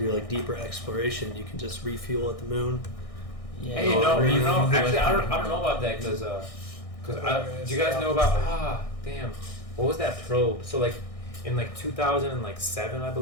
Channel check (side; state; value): right; late; 1.6 ms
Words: like deeper exploration, you can just refuel at the moon. Yeah. Hey, no. Actually, I don't know about that because do you guys know about what was that probe? So like in like 2007, I